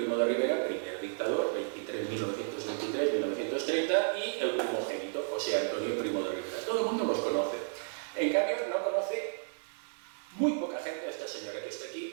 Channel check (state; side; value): silent; left; digital silence